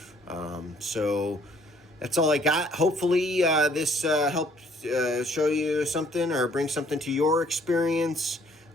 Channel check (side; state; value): both; normal; correlation 0.62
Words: So that's all I got. Hopefully this helped show you something or bring something to your experience